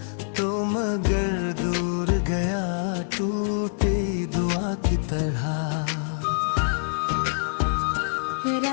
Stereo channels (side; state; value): right; silent; digital silence